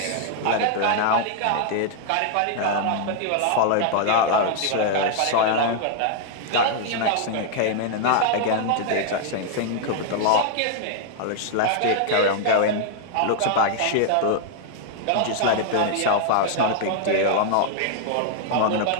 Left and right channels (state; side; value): different; both; correlation 0.00